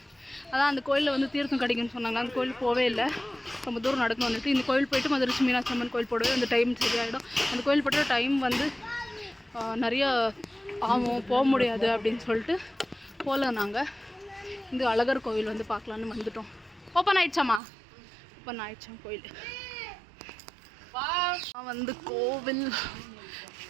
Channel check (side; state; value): left; drops out; at 17.6 s